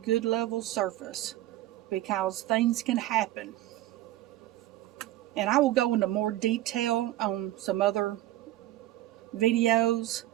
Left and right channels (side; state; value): left; quieter; 15.1 dB